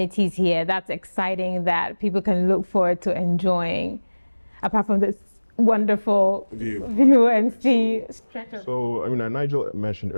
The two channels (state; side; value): inverted; both; correlation -1.00